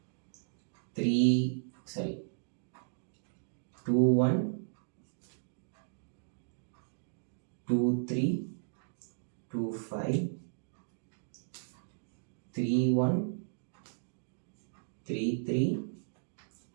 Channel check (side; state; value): left; silent; digital silence